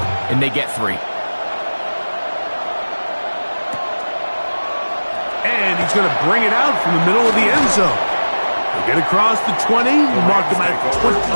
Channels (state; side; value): inverted; both; correlation -1.00